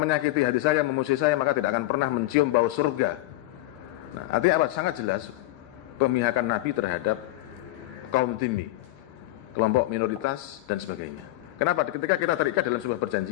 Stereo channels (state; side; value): quieter; right; 17.3 dB